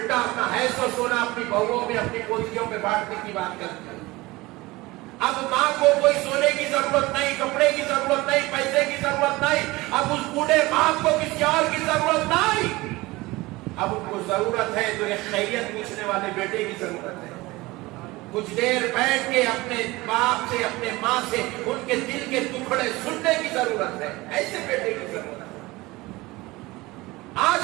اپنا حیث و سونا اپنی بہوؤں میں، اپنی پوتیوں میں بانٹنے کی بات کرتی ہے. اب ماں کو کوئی سونے کی ضرورت نہیں، کپڑے کی ضرورت نہیں، پیسے کی ضرورت نہیں. اب اس بوڑھے باپ کو کسی اور کی ضرورت نہیں، اب ان کو ضرورت ہے تو ایک خیریت پوچھنے والے بیٹے کی ضرورت ہے. کچھ دیر بیٹھ کے اپنے باپ سے، اپنے ماں سے ان کے دل کے ٹکڑے سننے کی ضرورت ہے، ایسے بیٹے کی ضرورت ہے.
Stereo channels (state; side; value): quieter; left; 21.0 dB